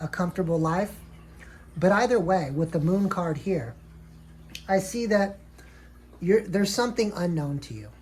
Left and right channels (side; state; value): both; identical; correlation 1.00